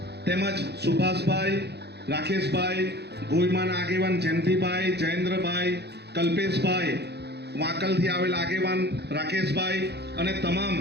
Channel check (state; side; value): late; left; 0.48 ms